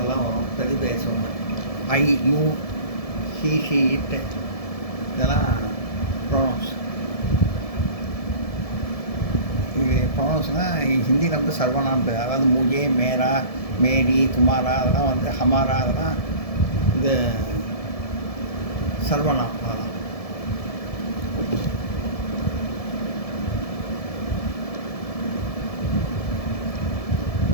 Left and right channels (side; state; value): right; late; 1.7 ms